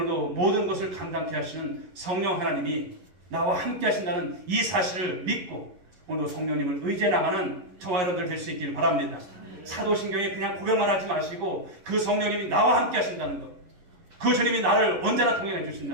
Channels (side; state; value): left; late; 11 ms